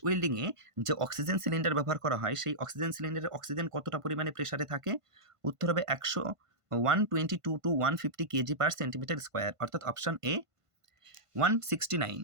ওয়েল্ডিংয়ে যে অক্সিজেন সিলিন্ডার ব্যবহার করা হয়, সেই অক্সিজেন সিলিন্ডারে অক্সিজেন কতটা পরিমাণে প্রেশারে থাকে? উত্তর হবে 122 to 150 kg per centimetre square, অর্থাৎ option A. 169,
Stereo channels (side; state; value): left; late; 1.5 ms